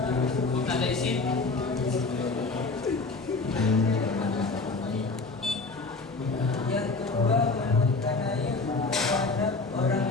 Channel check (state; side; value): quieter; right; 3.8 dB